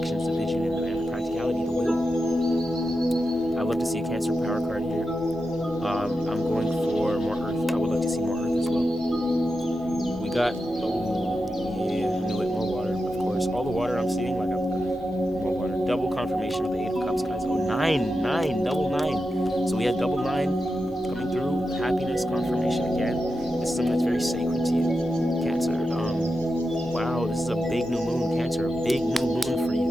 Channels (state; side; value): normal; both; correlation 0.89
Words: the vision, and the practicality, the will. I'd love to see a Cancer power card here. I'm going for more Earth. I would love to see more Earth as well. We got, more water, of course. All the water I'm seeing, like, more water. Double confirmation of the 8 of Cups, guys. Oh, 9, double 9. So we had double 9 coming through. Happiness confirmation again. This is something that's very sacred to you, Cancer. Wow, this is a big new moon, Cancer. A big new moon for